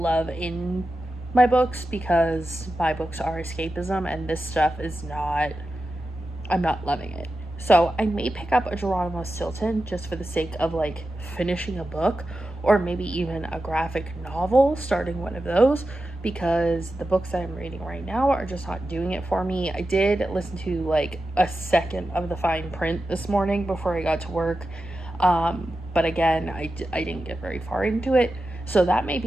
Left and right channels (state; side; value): normal; both; correlation 0.91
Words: in my books, because my books are escapism and this stuff is not, I'm not loving it. So I may pick up a Geronimo Stilton just for the sake of like finishing a book, or maybe even a graphic novel, starting one of those, because the books that I'm reading right now are just not doing it for me. I did listen to like a second of the fine print this morning before I got to work, but again, I didn't get very far into it. So that may